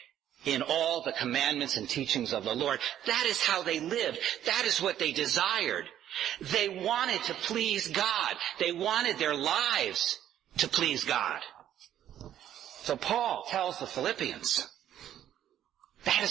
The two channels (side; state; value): left; quieter; 11.1 dB